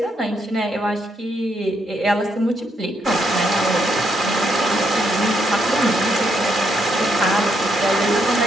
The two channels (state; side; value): normal; both; correlation 0.76